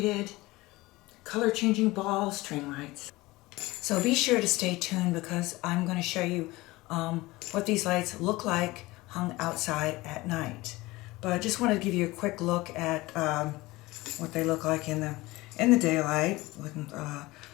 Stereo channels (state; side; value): quieter; right; 20.4 dB